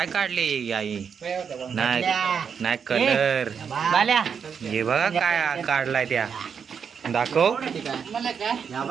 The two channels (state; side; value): quieter; left; 6.8 dB